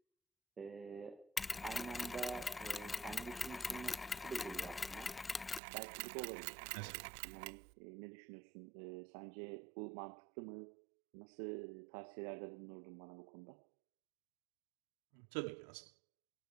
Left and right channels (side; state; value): left; drops out; at 5.6 s